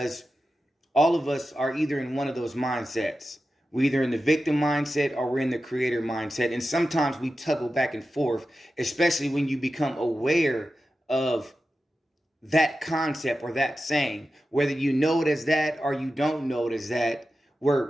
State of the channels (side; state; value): both; normal; correlation 0.92